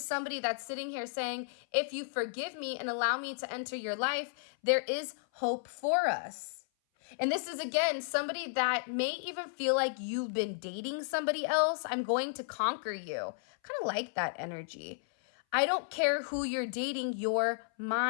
somebody that's sitting here saying, if you forgive me and allow me to enter your life, there is hope for us. And this is, again, somebody that may even feel like you've been dating somebody else. I'm going to conquer you. Kind of like that energy. I don't care who you're dating, you're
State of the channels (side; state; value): right; silent; 55 dB below the other